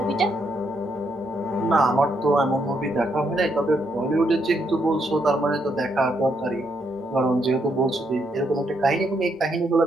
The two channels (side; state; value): both; normal; correlation 0.77